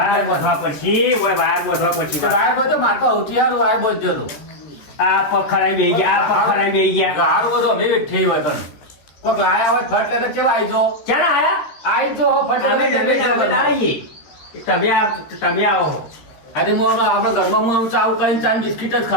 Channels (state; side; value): late; right; 13 ms